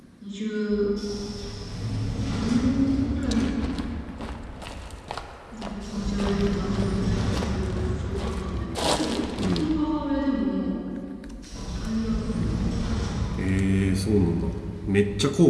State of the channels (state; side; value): identical; both; correlation 1.00